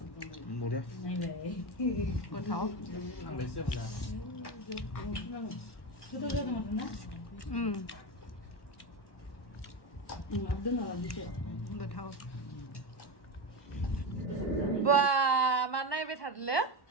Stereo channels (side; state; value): right; late; 1.1 ms